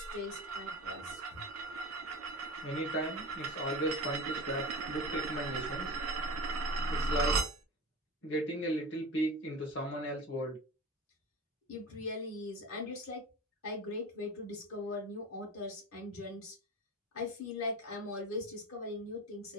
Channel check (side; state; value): both; normal; correlation 0.32